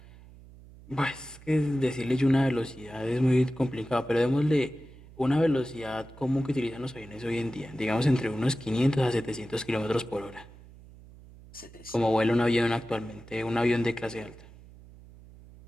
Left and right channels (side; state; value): right; noise; hum, 20 dB below the sound